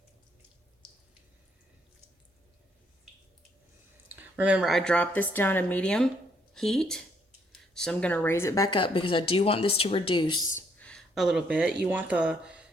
Remember, I dropped this down to medium heat, so I'm gonna raise it back up because I do want this to reduce a little bit. You want the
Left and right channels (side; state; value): both; normal; correlation 0.70